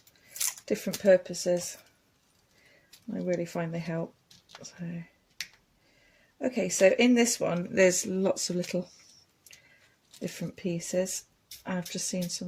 different purposes. I really find they help. So, okay, so in this one there's lots of little different pieces. I've just seen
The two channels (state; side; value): identical; both; correlation 1.00